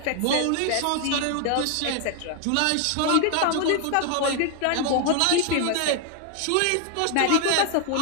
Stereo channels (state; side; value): different; both; correlation 0.00